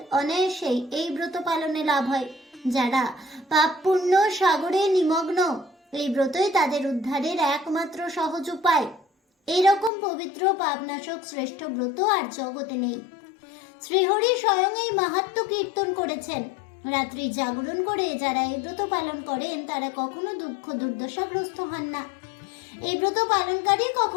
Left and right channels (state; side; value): drops out; right; at 9.9 s